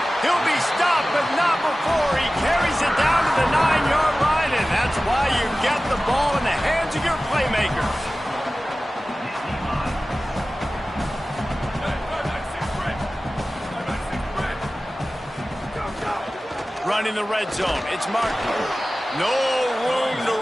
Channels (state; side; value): normal; both; correlation 0.96